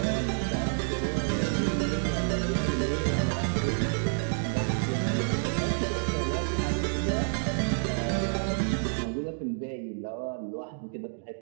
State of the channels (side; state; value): left; silent; digital silence